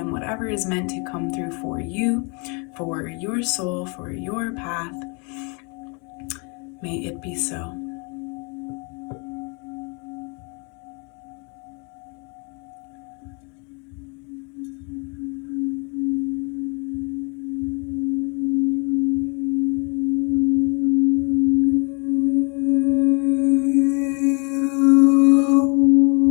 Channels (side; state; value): right; quieter; 34.1 dB